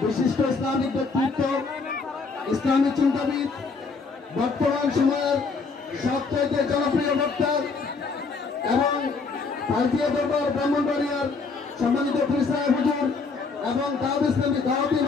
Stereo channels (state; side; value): quieter; right; 4.5 dB